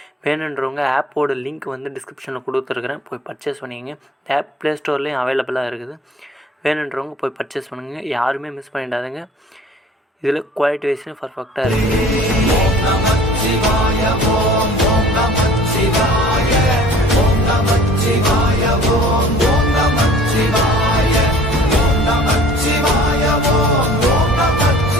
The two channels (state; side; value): normal; both; correlation 0.49